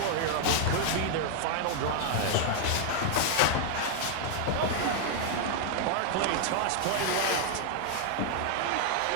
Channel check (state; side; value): different; both; correlation 0.00